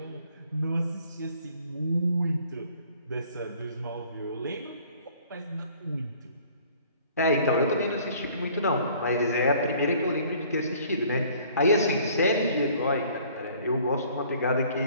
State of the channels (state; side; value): inverted; both; correlation -0.55